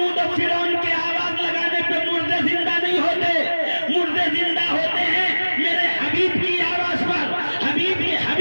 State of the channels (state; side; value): inverted; both; correlation -1.00